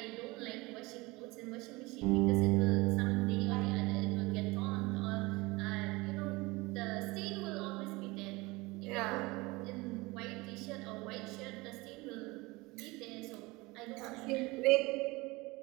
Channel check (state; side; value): quieter; left; 23.0 dB